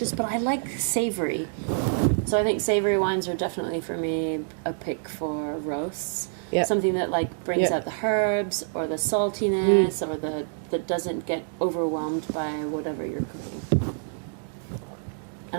But I like savory. So I think savory wines are definitely for me a pick for roasts. Yep. Something that like brings out the herbs or the saltiness or that doesn't get overwhelmed by whatever you're cooking.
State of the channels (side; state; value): left; silent; digital silence